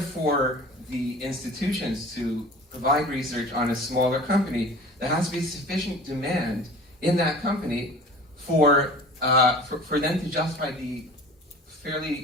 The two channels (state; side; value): normal; both; correlation 0.41